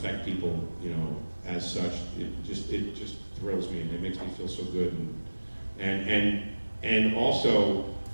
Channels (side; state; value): both; inverted; correlation -1.00